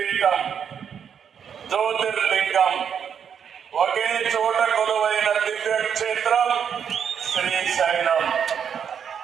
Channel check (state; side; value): quieter; left; 7.7 dB